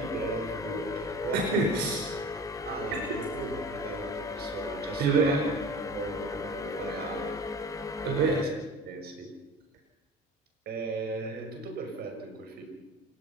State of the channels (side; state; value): both; normal; correlation 0.38